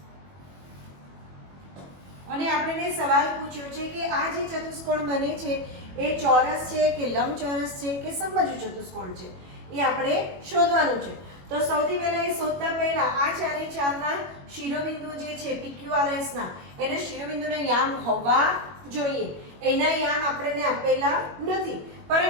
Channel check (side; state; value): left; late; 21 ms